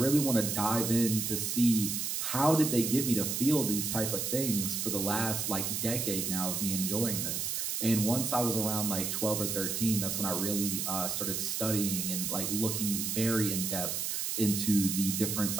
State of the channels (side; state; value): right; noise; hiss, 1 dB below the sound